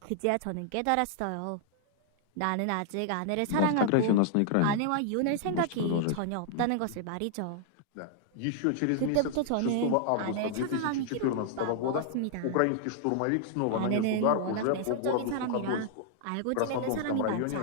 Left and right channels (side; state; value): both; different; correlation -0.01